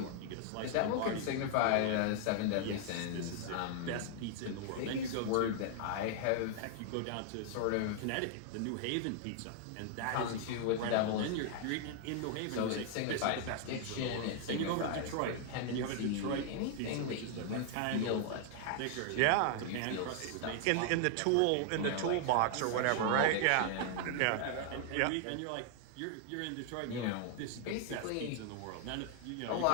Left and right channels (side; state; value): both; different; correlation 0.00